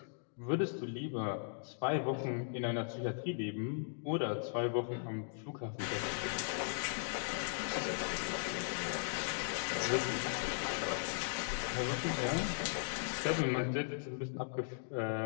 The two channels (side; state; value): right; silent; digital silence